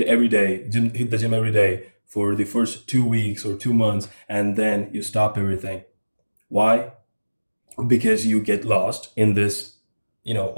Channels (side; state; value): both; inverted; correlation -1.00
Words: the gym every day for the first 2 weeks or 2 months, and then you stop everything. Why? Because you get lost in this,